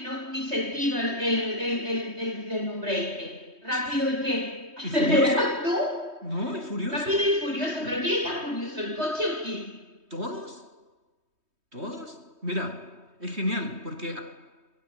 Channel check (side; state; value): left; late; 3.2 ms